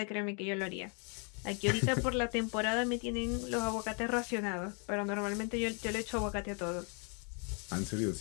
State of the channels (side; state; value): right; quieter; 38.1 dB